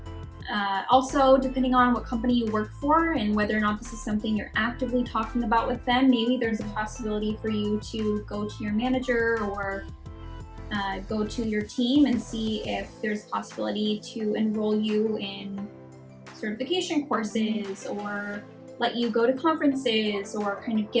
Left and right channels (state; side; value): identical; both; correlation 1.00